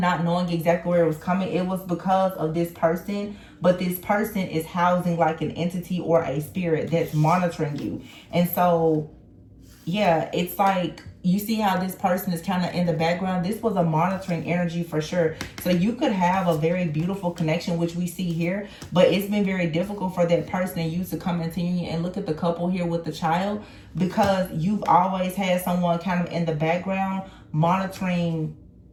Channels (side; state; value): both; identical; correlation 1.00